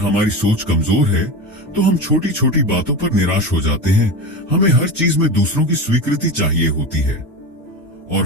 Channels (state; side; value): normal; both; correlation 0.24